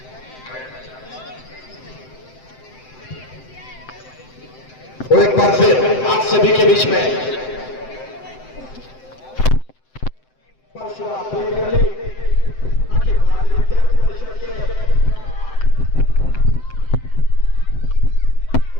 वो एक बार फिर आप सभी के बीच में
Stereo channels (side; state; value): right; late; 7.8 ms